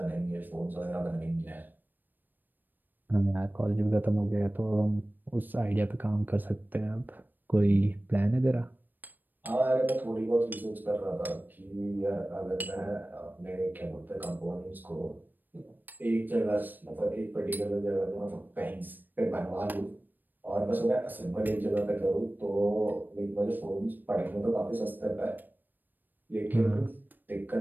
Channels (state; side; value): late; left; 0.091 ms